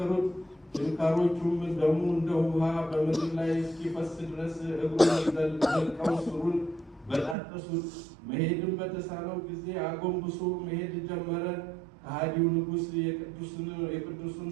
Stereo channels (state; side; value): drops out; left; at 7.4 s